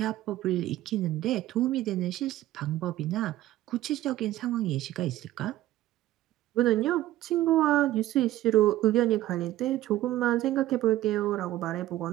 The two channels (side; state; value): left; quieter; 14.9 dB